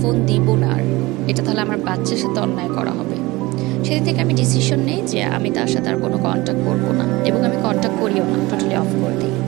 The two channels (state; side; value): quieter; left; 21.1 dB